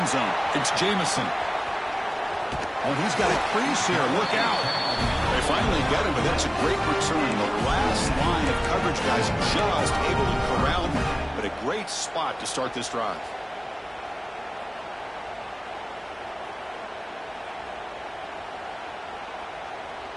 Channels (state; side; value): identical; both; correlation 1.00